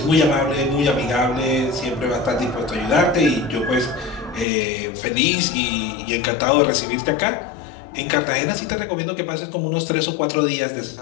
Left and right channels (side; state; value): right; drops out; at 4.5 s